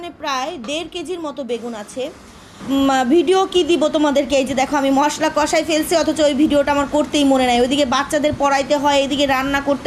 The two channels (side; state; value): both; identical; correlation 1.00